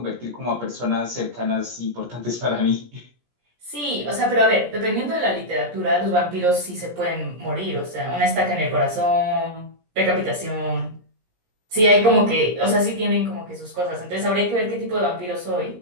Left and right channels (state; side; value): late; left; 17 ms